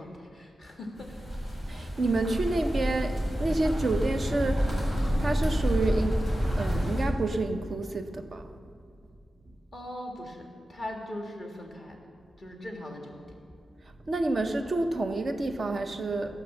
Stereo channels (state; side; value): normal; both; correlation 0.93